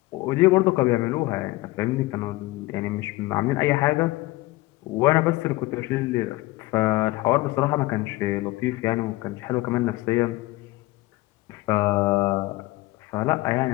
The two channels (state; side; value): quieter; right; 19.8 dB